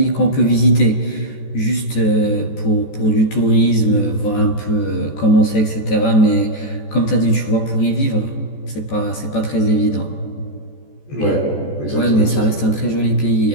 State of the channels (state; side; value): late; right; 14 ms